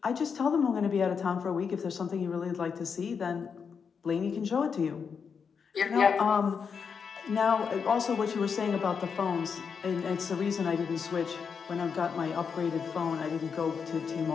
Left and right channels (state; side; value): quieter; right; 6.2 dB